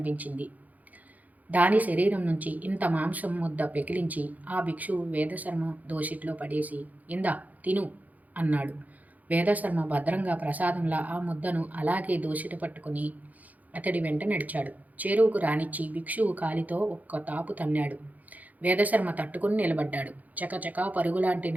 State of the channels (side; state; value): left; late; 0.079 ms